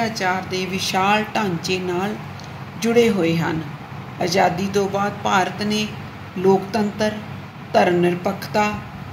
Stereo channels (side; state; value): both; identical; correlation 1.00